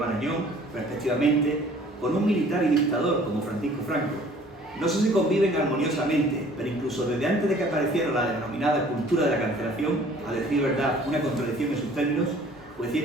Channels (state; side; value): normal; both; correlation 0.53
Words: respectivamente, con un militar y dictador como Francisco Franco. No sé si conviven armoniosamente, pero incluso desde antes de que apareciera la denominada cultura de la cancelación, a decir verdad, una contradicción en sus términos, pues si